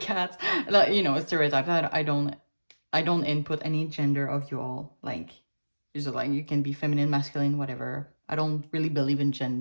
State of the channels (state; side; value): inverted; both; correlation -1.00